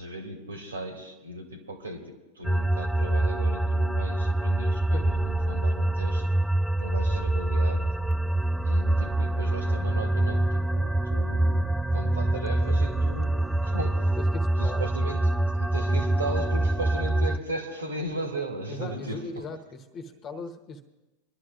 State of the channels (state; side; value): normal; both; correlation 0.86